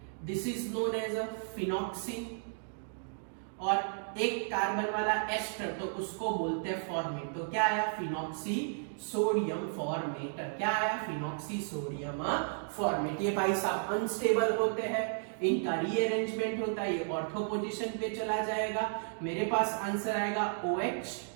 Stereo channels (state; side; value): silent; left; digital silence